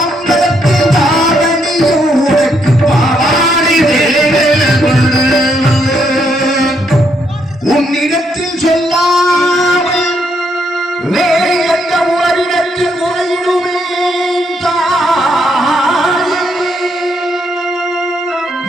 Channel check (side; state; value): both; normal; correlation 0.75